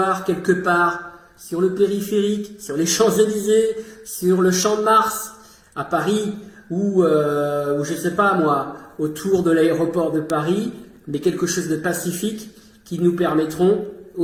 quelque part sur le périphérique, sur les Champs-Élysées, sur le Champ de Mars, à Paris, ou je sais pas moi, autour de l'aéroport de Paris, mais quelque chose de pacifique qui nous permettront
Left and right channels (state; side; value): identical; both; correlation 1.00